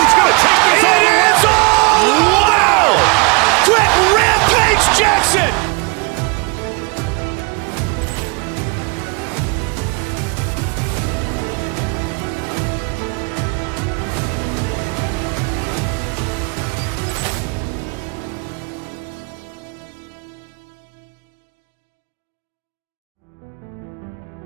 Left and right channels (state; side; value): quieter; left; 31.6 dB